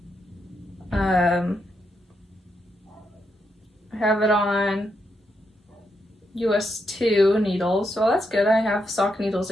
I have it on US 2 needles, so that's good. I have sock needles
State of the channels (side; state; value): both; normal; correlation 0.81